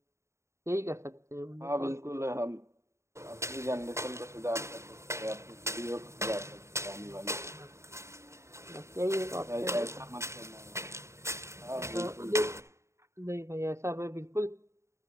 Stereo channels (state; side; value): late; left; 0.14 ms